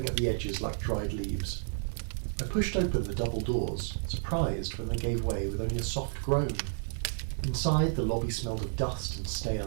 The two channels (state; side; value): silent; left; 57 dB below the other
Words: at the edges like dried leaves. I pushed open the double doors, surprised when they gave way with only a soft groan. Inside, the lobby smelled of dust and